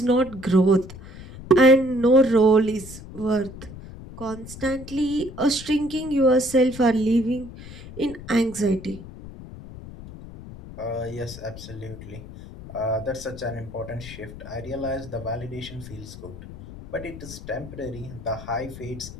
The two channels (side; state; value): left; noise; rumble, 14 dB below the sound